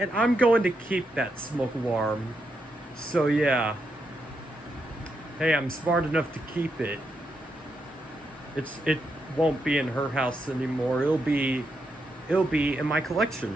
I'm going to keep that smoke alarm. So yeah. Hey, I'm smart enough to keep it. It won't be in her house anymore. It'll be in my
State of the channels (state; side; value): normal; both; correlation 0.82